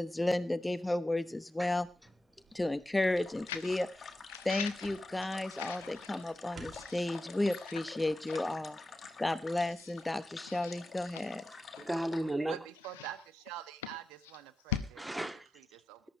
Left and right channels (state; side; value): normal; both; correlation 0.91